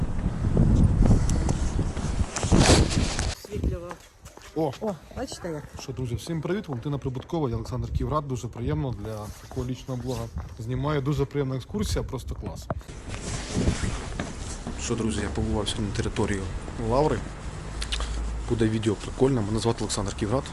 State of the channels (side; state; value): both; identical; correlation 1.00